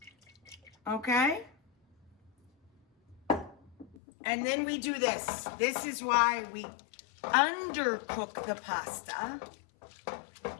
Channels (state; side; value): drops out; right; at 4.0 s